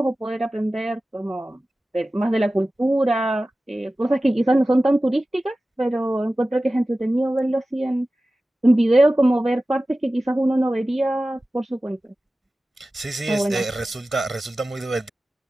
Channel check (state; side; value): normal; both; correlation 0.96